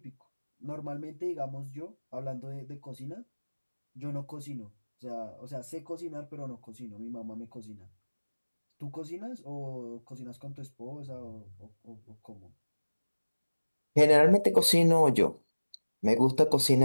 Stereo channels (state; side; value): inverted; both; correlation -1.00